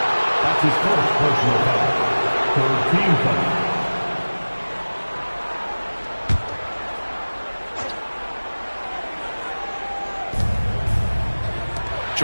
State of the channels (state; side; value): inverted; both; correlation -1.00